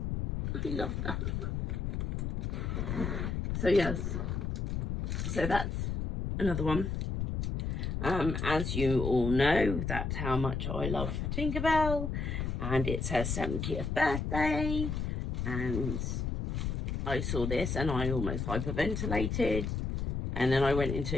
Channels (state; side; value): noise; left; rumble, 2 dB below the sound